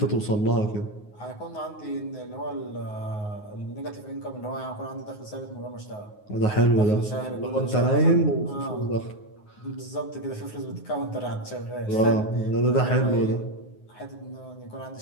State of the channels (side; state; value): right; late; 9.5 ms